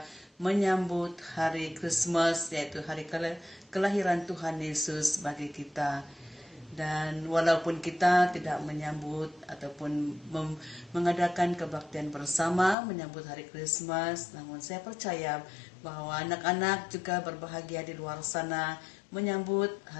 menyambut hari Christmas, yaitu hari kelahiran Tuhan Yesus bagi kita. Dan walaupun kita tidak menyambut ataupun mengadakan kebaktian bersama menyambut hari Christmas, namun saya percaya bahwa anak-anak juga berbahagia di luar sana menyambut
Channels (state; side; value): drops out; right; at 12.8 s